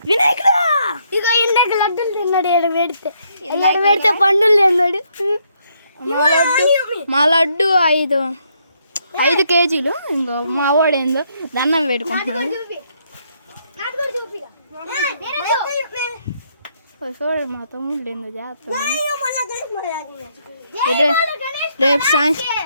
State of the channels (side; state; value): both; inverted; correlation -0.73